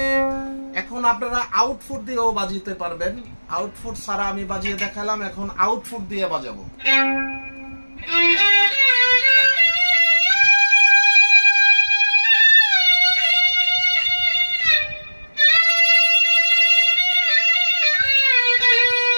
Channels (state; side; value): inverted; both; correlation -1.00